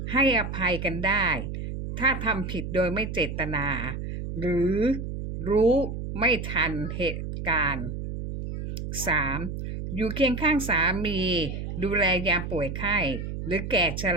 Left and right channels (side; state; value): right; noise; hum, 6 dB below the sound